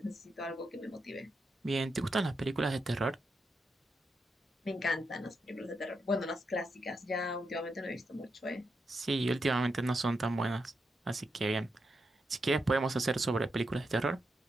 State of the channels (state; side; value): normal; both; correlation 0.84